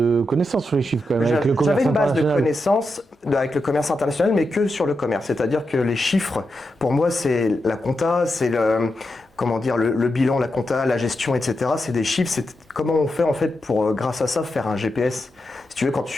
connaissances sur les chiffres quand même. J'avais une base de connaissances avec le commerce international, mais que sur le commerce. C'est-à-dire que les chiffres, pour moi, c'est la compta, c'est le bilan, la compta, la gestion, etc. C'est des chiffres. C'est comment on fait en fait pour, grâce à ça, faire un GPS. Si tu veux, quand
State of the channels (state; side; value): normal; both; correlation 0.87